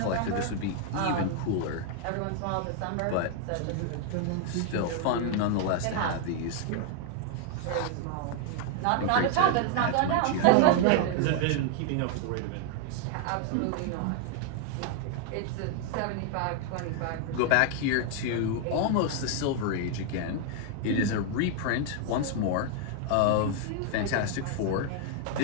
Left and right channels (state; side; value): different; both; correlation 0.00